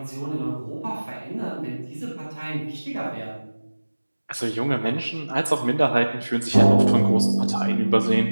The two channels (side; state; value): both; inverted; correlation -1.00